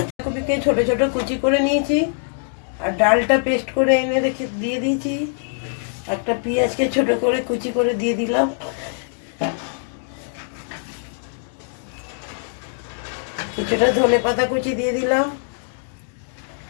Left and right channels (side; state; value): right; silent; digital silence